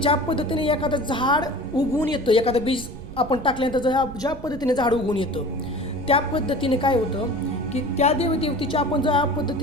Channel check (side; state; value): right; noise; rumble, 13 dB below the sound